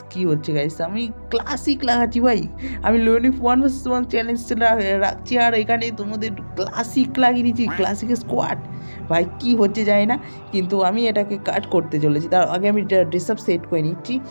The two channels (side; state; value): both; inverted; correlation -1.00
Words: কি হচ্ছে গাইস, আমি ক্লাসিক লাগাচ্ছি ভাই। আমি লোনউইফ 1 vs 1 চ্যালেঞ্জ রাখছি, আর এখানে তোমাদের ক্লাসিক লাগিয়ে দিচ্ছি, ক্লাসিক স্কোয়াড। ভাই কি হচ্ছে জানি না, কিন্তু আমি এটাকে কাট করতে চলেছি। তার আগে আমি ড্রেস আপ সেট করে নিচ্ছি।